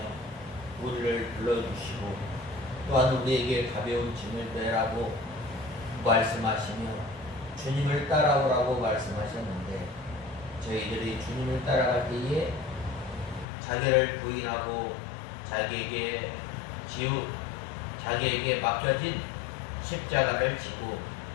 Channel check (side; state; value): right; drops out; at 13.5 s